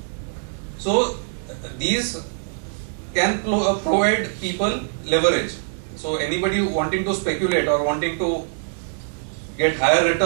So these can provide people leverage. So anybody wanting to speculate or wanting to get higher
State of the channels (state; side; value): silent; left; digital silence